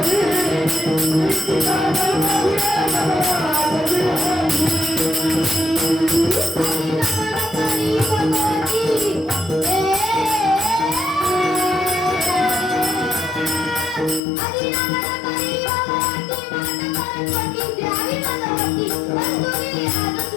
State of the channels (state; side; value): drops out; right; at 14.2 s